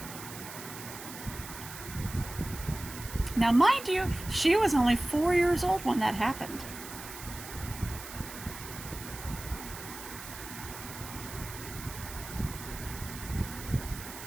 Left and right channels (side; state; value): right; noise; hiss, 12 dB below the sound